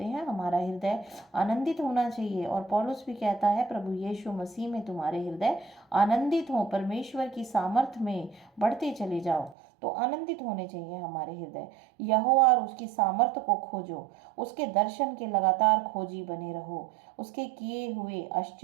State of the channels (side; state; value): left; drops out; at 9.6 s